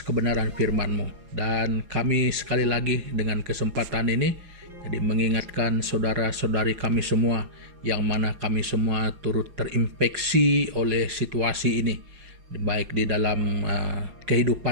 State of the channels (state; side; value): late; left; 5.5 ms